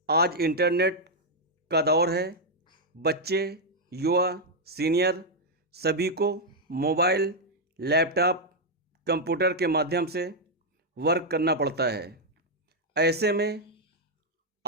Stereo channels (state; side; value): normal; both; correlation -0.01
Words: आज इंटरनेट का दौर है। बच्चे, युवा, सीनियर सभी को मोबाइल, लैपटॉप, कंप्यूटर के माध्यम से वर्क करना पड़ता है। ऐसे में